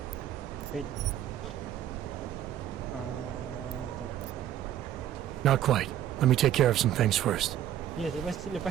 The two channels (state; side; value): quieter; left; 11.3 dB